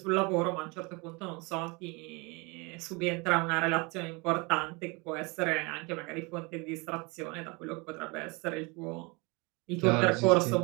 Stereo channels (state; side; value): quieter; left; 28.0 dB